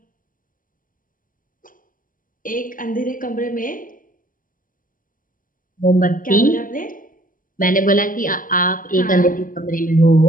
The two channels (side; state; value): right; late; 0.40 ms